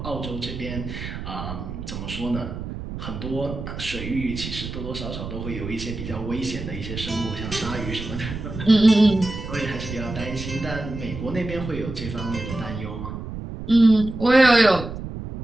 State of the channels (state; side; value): noise; right; rumble, 8 dB below the sound